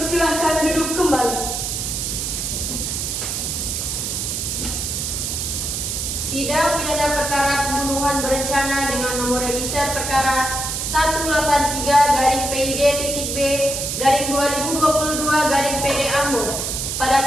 duduk kembali. Sidang pidana perkara pembunuhan berencana dengan nomor register perkara 183-B/PD-B/2022 Ambon pada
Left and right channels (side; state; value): right; noise; hiss, 2 dB below the sound